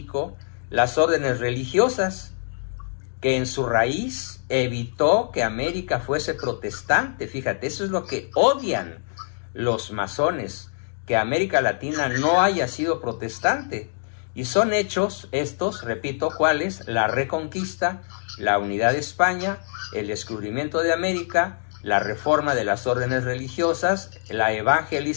las órdenes religiosas, que en su raíz evitó que América fuese protestante. Fíjate, eso es lo que odian los masones, que América Latina no haya sido protestante. Y son hechos estos, repito, ¿cuáles? La reconquista, la unidad de España, el descubrimiento de América, la reforma de las órdenes religiosas, la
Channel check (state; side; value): silent; right; digital silence